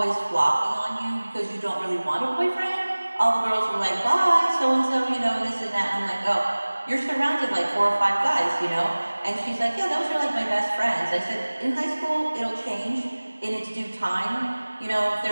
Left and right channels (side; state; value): both; inverted; correlation -1.00